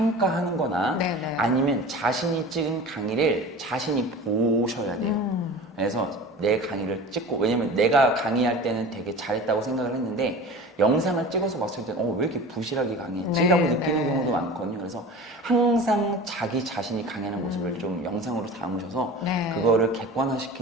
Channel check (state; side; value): normal; both; correlation 0.37